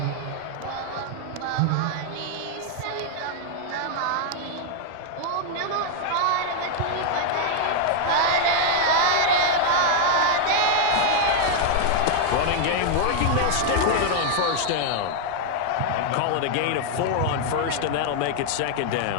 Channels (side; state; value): both; different; correlation 0.00